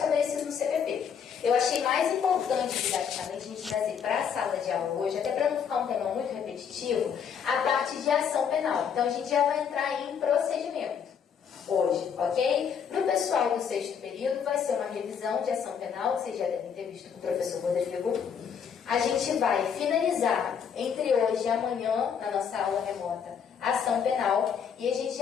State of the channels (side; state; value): right; quieter; 7.4 dB